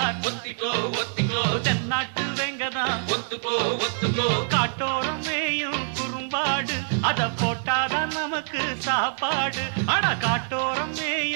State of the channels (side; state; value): left; silent; digital silence